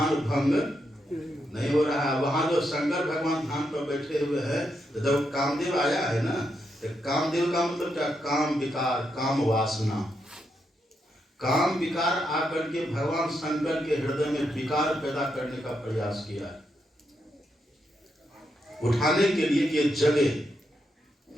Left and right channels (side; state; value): both; normal; correlation 0.81